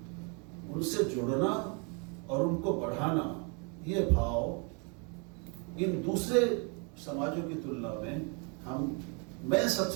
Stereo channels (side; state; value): left; quieter; 35.3 dB